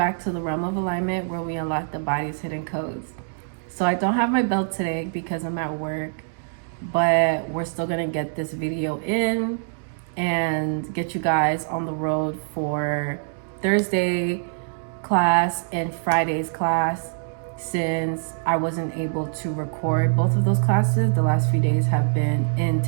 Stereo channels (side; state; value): left; silent; digital silence